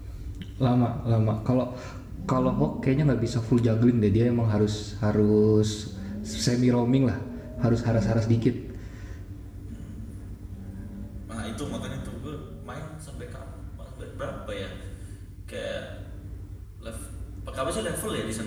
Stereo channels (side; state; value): both; identical; correlation 1.00